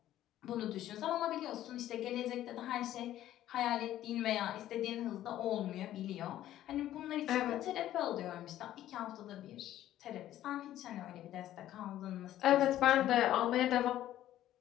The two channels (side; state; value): right; quieter; 13.0 dB